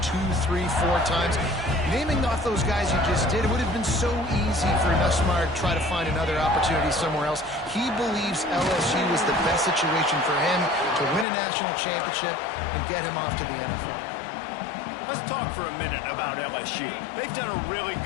3, 4 times, naming off those guys you just did, it would have been so easy for Nussmeier to try to find another opportunity somewhere else. He believes LSU is the best situation for him to win a national championship and get him off to the NFL. Let's talk for a minute about LSU. They've done a really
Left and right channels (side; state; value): right; drops out; at 11.2 s